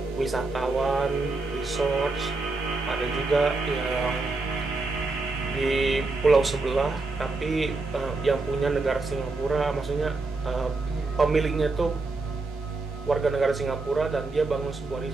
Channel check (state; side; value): quieter; left; 3.5 dB